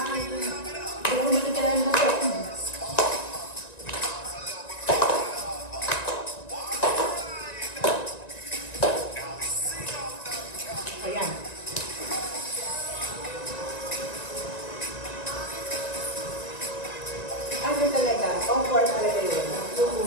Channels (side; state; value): right; late; 1.9 ms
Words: na. Kaya kung nakikilala mo ito. Ayan. Ano talaga? Comfort talaga yun.